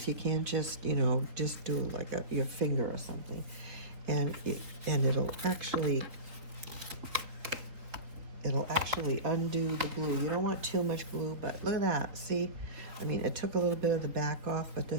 You can't just, just do like your finger or something. And it'll actually undo the glue. You don't want too much glue, but look at that. See, I mean, it took a little bit of the back off, but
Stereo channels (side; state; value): left; late; 3.9 ms